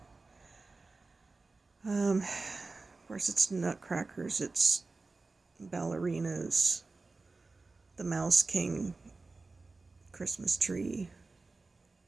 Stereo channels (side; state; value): left; quieter; 3.7 dB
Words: Of course, it's nutcrackers, it's ballerinas, the Mouse King Christmas tree,